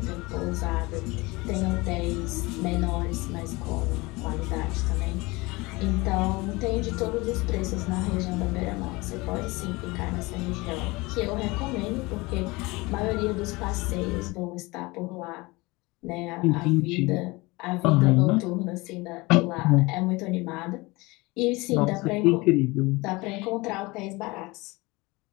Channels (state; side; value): quieter; right; 23.3 dB